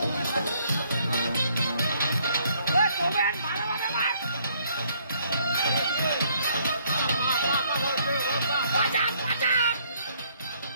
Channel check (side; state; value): both; inverted; correlation -0.65